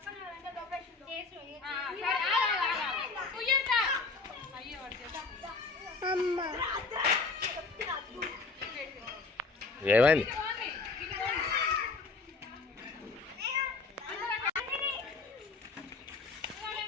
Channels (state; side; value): quieter; right; 4.1 dB